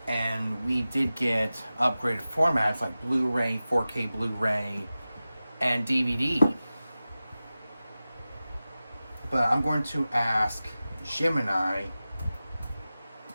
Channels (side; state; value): both; inverted; correlation -0.95